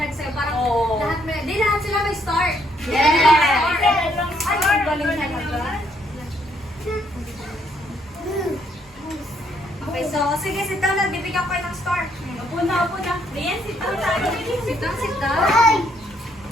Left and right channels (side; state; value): both; normal; correlation 0.71